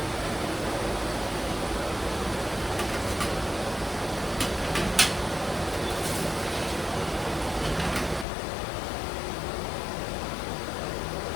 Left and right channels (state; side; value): drops out; right; at 8.2 s